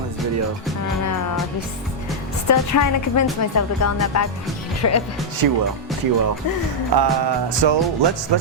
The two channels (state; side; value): normal; both; correlation -0.04